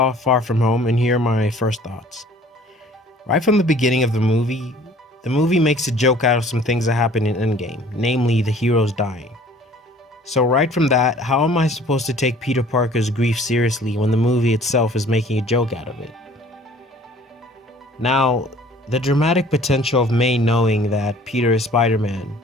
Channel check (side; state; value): both; normal; correlation 0.52